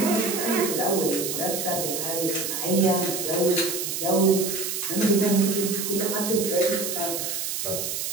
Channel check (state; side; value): noise; right; hiss, 3 dB below the sound